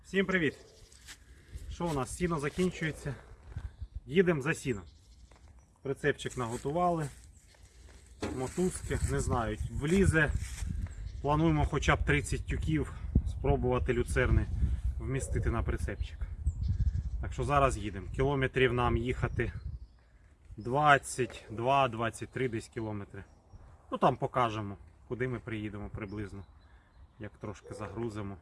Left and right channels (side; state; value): both; identical; correlation 1.00